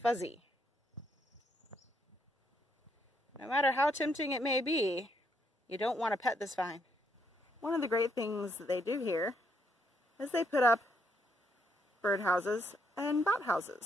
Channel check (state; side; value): normal; both; correlation 0.74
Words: fuzzy. No matter how tempting it may be, you don't want to pet this vine. One of the great things that they do here is they put up birdhouses and bat